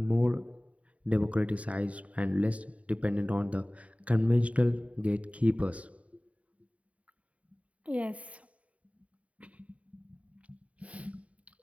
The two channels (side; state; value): left; late; 0.067 ms